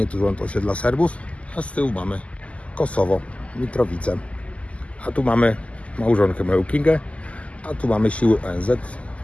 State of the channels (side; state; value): right; late; 0.063 ms